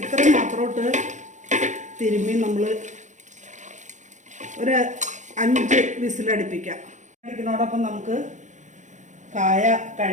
ഇത്രയും മാത്രം ഇട്ട് തിരുമ്മി നമ്മൾ ഒരു 5 വിസിലടുപ്പിക്കാം. അടിക്കുന്നതോടൊപ്പം നമുക്ക് കായ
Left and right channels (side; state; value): left; late; 0.35 ms